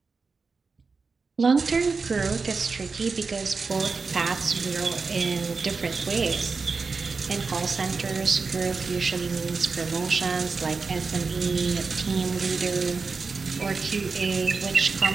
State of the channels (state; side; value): quieter; left; 4.6 dB